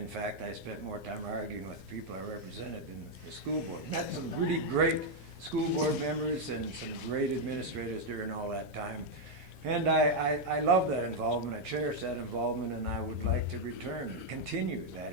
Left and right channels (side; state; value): left; late; 7.8 ms